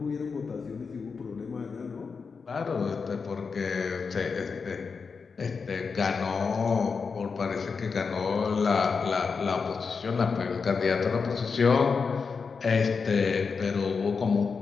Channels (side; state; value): right; quieter; 5.2 dB